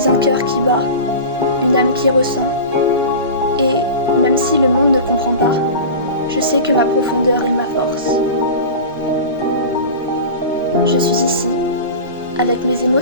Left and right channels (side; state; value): both; inverted; correlation -0.31